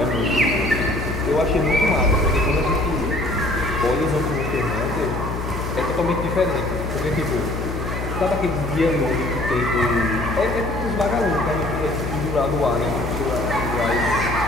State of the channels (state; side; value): noise; left; hum, 5 dB below the sound